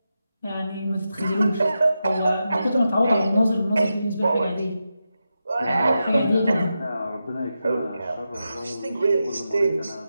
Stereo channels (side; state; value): both; inverted; correlation -0.89